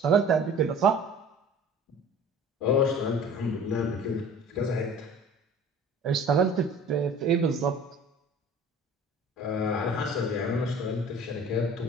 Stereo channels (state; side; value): normal; both; correlation 0.45